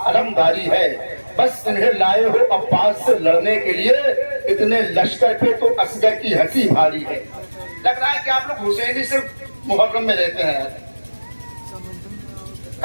علمداری ہے، بس انہیں لائے ہو عباس سے لڑنے کے لیے، اتنے لشکر پہ تو اصغر کی ہنسی بھاری ہے۔ لگ رہا ہے کہ آپ لوگ حسینی صرف محرم میں رہتے ہیں،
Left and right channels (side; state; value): both; inverted; correlation -1.00